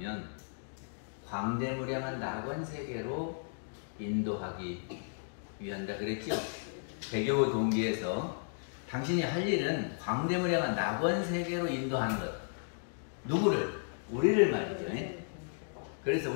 광대무량한 낙원세계로 인도하기 위한다 그랬죠? 배교 동기에서 당신이 할 일은 광대무량한 낙원세계로 인도하는 것. 누구를? 우리를 말이죠. 그래서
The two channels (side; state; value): right; silent; digital silence